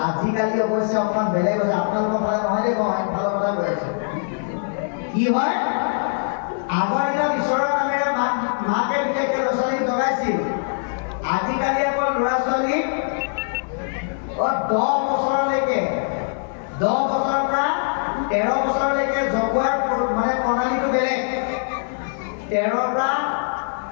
আজিকালি অৱশ্যে অকণমান বেলেগ হৈছে। আপোনালোকৰ ফালে নহয় দেই, মই ফালৰ কথা কৈ আছো। কি হয়, আগৰ দিনত ঈশ্বৰৰ নামেৰে মাকে বিশেষকৈ ল'ৰা ছোৱালীক জগাইছিল। আজিকালি আকৌ ল'ৰা ছোৱালীক 10 বছৰলৈকে, 10 বছৰৰ পৰা 13 বছৰলৈকে জগোৱাৰ মানে প্ৰণালীটো বেলেগ। 13ৰ পৰা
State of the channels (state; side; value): silent; right; 64 dB below the other